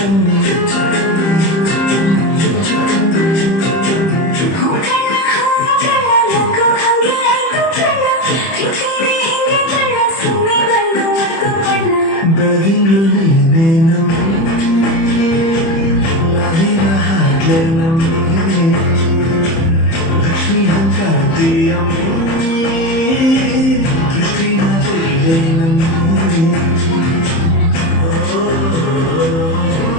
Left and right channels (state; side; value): late; right; 30 ms